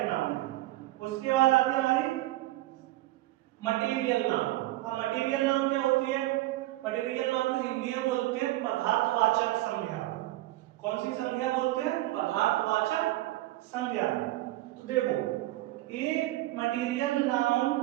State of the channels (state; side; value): quieter; left; 17.4 dB